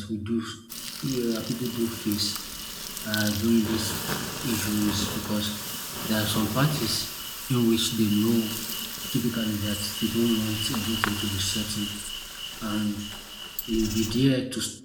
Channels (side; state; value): both; identical; correlation 1.00